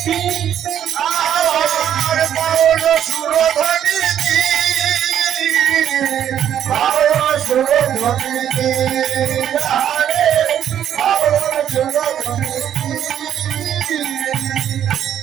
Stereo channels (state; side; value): quieter; left; 10.0 dB